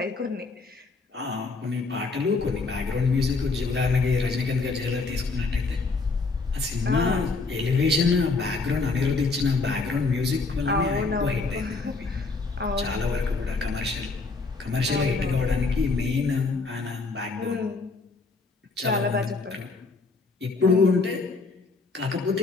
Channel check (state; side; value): quieter; right; 4.0 dB